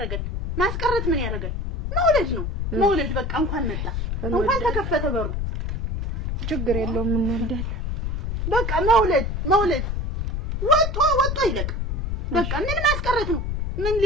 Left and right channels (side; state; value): left; noise; rumble, 2 dB below the sound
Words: ማስቀረት ምን ያደርጋል? መውለድ በቃ እንኳን መጣ እንኳን ተከፈተ በሩ ችግር የለውም እንወልዳለን። በቃ መውለድ ወጥቶ ይለቅ። በቃ ምን ማስቀረት ነው? ምን